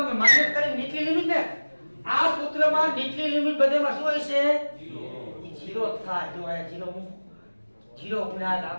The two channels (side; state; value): both; inverted; correlation -1.00